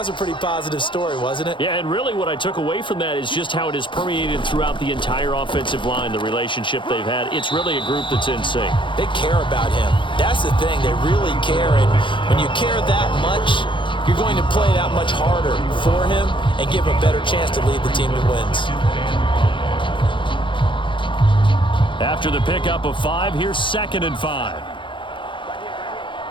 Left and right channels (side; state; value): right; late; 0.24 ms